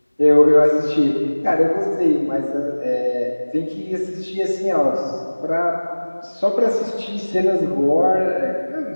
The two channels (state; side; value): inverted; both; correlation -1.00